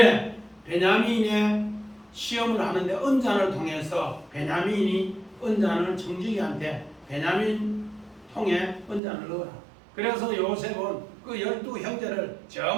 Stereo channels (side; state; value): left; drops out; at 9.0 s